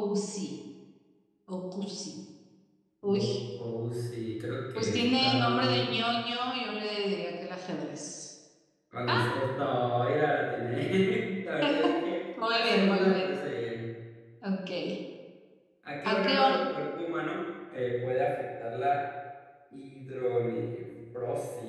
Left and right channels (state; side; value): identical; both; correlation 1.00